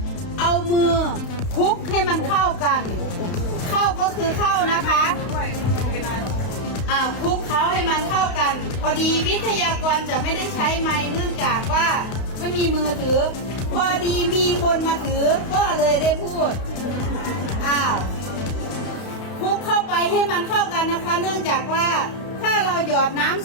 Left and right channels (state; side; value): late; right; 32 ms